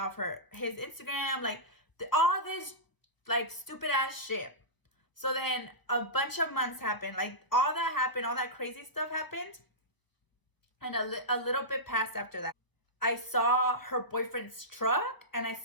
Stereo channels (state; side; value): late; right; 1.0 ms